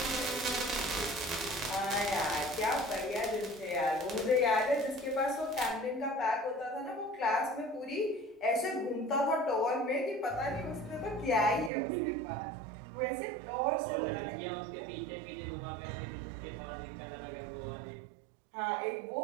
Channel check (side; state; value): left; drops out; at 11.7 s